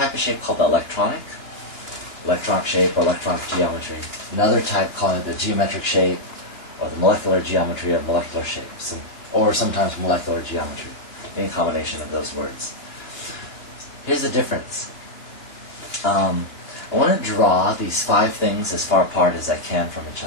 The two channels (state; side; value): late; right; 2.9 ms